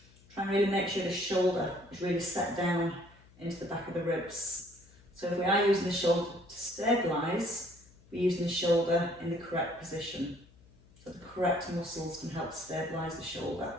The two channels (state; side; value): noise; left; hum, 26 dB below the sound